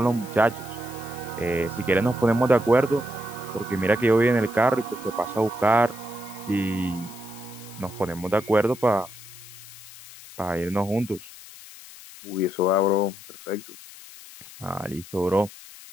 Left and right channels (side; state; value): left; noise; hiss, 17 dB below the sound